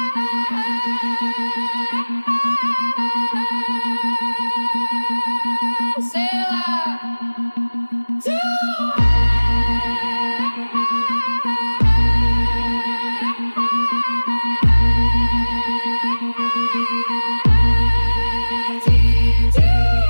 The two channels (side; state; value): both; inverted; correlation -1.00